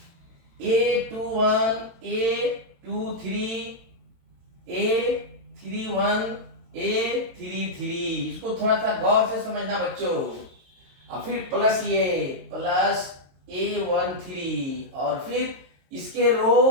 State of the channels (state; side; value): late; left; 22 ms